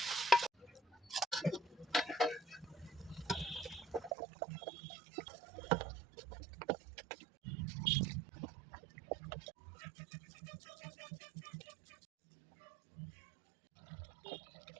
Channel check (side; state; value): left; drops out; at 4.2 s